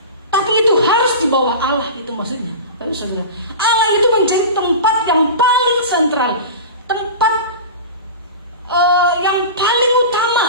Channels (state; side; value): inverted; both; correlation -0.31